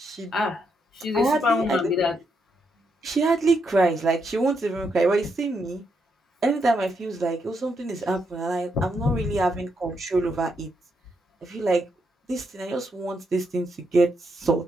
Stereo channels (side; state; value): both; normal; correlation 0.79